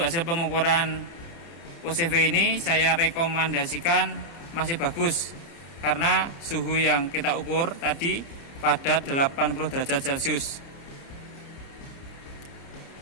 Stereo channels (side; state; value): right; late; 29 ms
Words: pengukuran OCV ini saya rekomendasikan masih bagus, karena suhu yang kita ukur tadi pada 80 derajat Celcius.